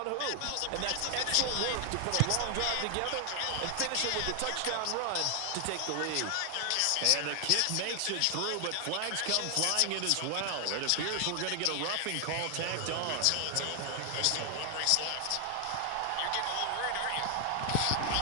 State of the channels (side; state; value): both; different; correlation 0.00